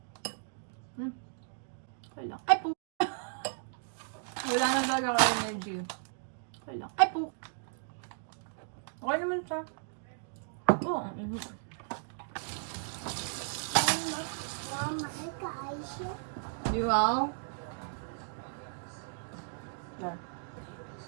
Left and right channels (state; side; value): silent; left; digital silence